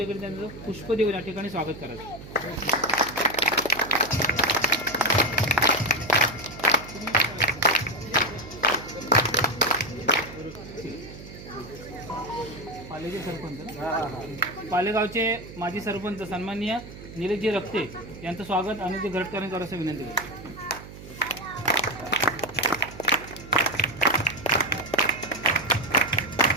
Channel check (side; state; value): right; noise; hum, 15 dB below the sound